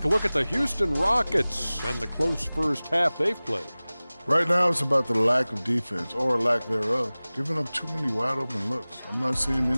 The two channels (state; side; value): inverted; both; correlation -0.99